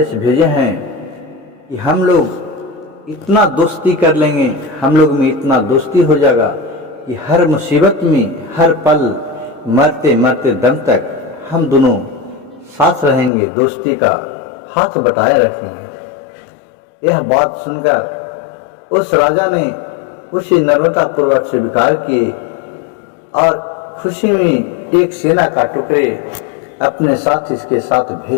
भेजे हैं कि हम लोग इतना दोस्ती कर लेंगे, हम लोग में इतना दोस्ती हो जाएगा कि हर मुसीबत में हर पल मरते मरते दम तक हम दोनों साथ रहेंगे, दोस्ती का हाथ बटाए रखेंगे। यह बात सुनकर उस राजा ने उसे नम्रता पूर्वक स्वीकार किए और खुशी में एक सेना का टुकड़े अपने साथ इसके साथ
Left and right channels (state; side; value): drops out; right; at 13.3 s